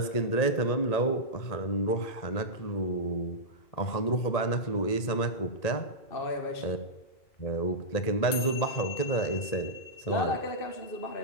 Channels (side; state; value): right; late; 1.8 ms